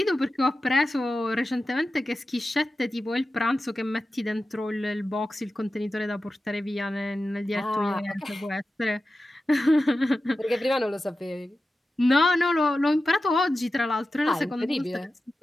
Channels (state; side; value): normal; both; correlation 0.93